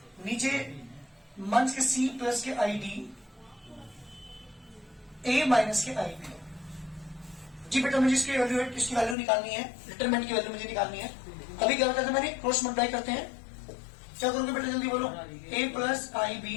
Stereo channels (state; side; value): drops out; right; at 9.2 s